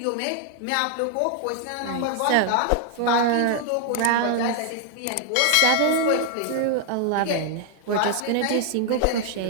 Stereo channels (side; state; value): both; different; correlation 0.00